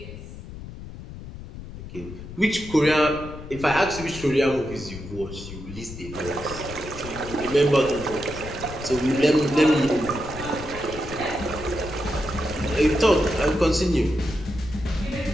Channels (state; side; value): noise; left; rumble, 12 dB below the sound